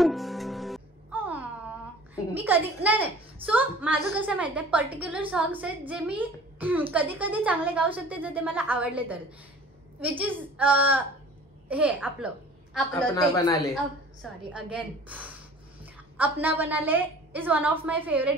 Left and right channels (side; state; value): both; normal; correlation 0.46